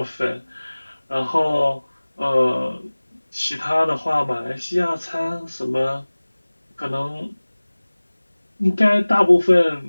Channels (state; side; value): inverted; both; correlation -1.00